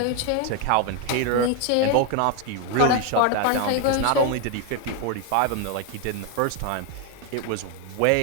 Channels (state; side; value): different; both; correlation 0.01